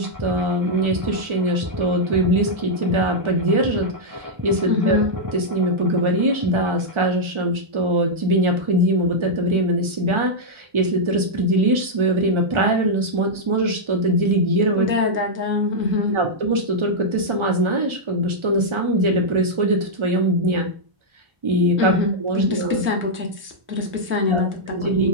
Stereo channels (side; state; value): left; late; 1.4 ms